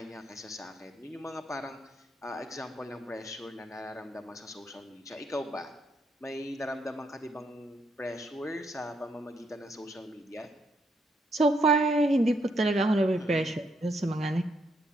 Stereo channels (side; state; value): both; normal; correlation 0.76